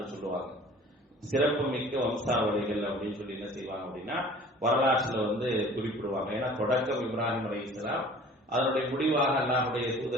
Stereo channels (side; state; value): both; normal; correlation 0.47